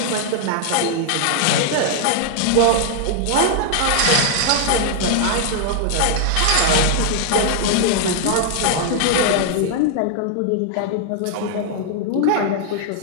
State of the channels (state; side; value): different; both; correlation 0.00